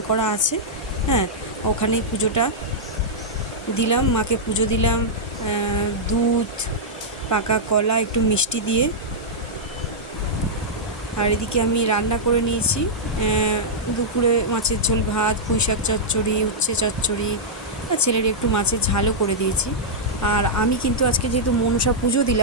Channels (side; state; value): both; normal; correlation -0.09